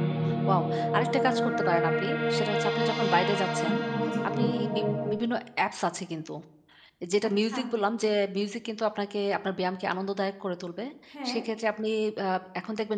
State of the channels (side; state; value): both; identical; correlation 1.00